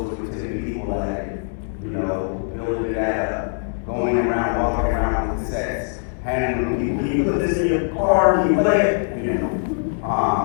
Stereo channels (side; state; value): right; silent; digital silence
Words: with 10 people at it, you know, building that up, going around, walking around with the sets, handing them people, can you put this in your car, can you play it, you know,